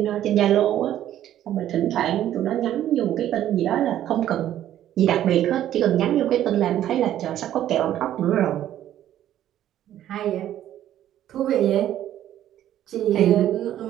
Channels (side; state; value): left; quieter; 11.9 dB